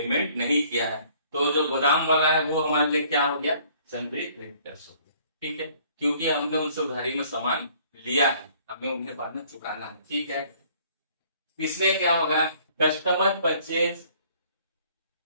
नहीं किया है, तो जो गोदाम वाला है वो हमारे लिए क्या हो गया, सन्ड्री क्रेडिटर्स हो गया। ठीक है, क्योंकि हमने उनसे उधारी में सामान लिया है, हमें उन्हें बाद में चुकाना है। ठीक है, इसमें क्या होगा, customer purchase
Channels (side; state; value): both; inverted; correlation -0.58